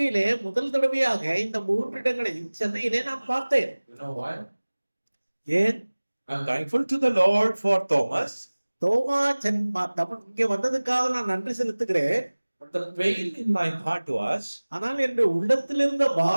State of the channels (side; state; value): both; inverted; correlation -1.00